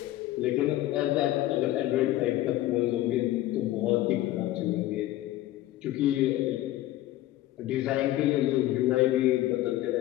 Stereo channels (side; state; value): right; quieter; 15.2 dB